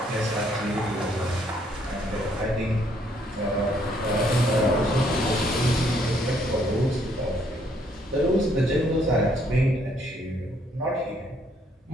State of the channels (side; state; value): both; normal; correlation 0.68